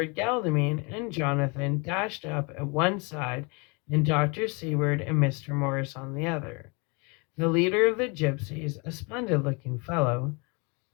Godalming and Jonathan dashed up at one side, and Dr. Seward and Mr. Morris on the other. The leader of the gypsies, a splendid-looking fellow,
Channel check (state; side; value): quieter; right; 30.9 dB